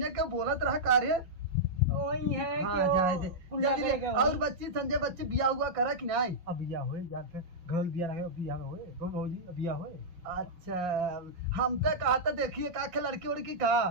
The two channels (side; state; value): left; late; 5.7 ms